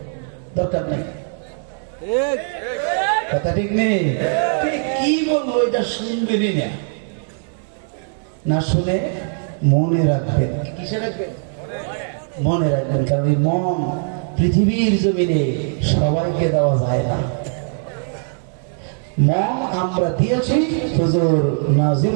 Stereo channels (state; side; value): silent; left; 59 dB below the other